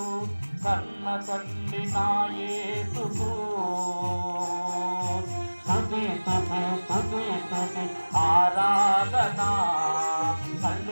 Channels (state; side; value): inverted; both; correlation -1.00